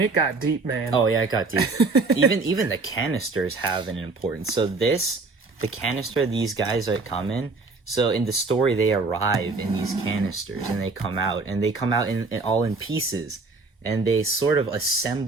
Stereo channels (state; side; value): quieter; left; 3.8 dB